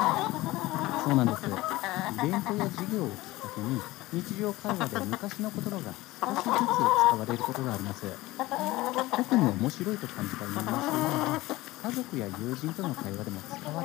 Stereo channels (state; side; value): quieter; right; 18.8 dB